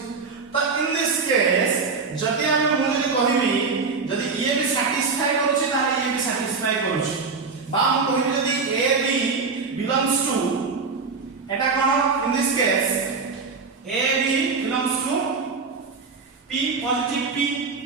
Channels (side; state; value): left; quieter; 4.7 dB